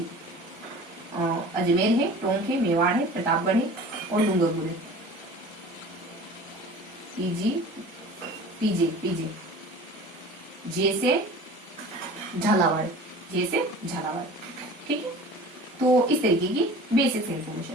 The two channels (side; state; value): both; normal; correlation 0.41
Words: अजमेर है, टोंक है, मेवाड़ है, प्रतापगढ़ है और डूंगरपुर है। पीजी, पीजे, पीजे, जैसे झालावाड़, जैसे झालावाड़। ठीक है। तो इस तरीके की बेसिक